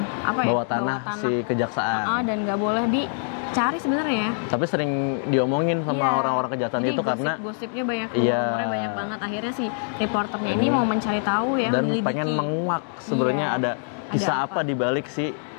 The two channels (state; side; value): silent; right; 62 dB below the other